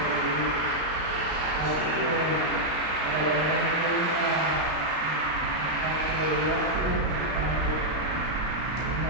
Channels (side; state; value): left; late; 33 ms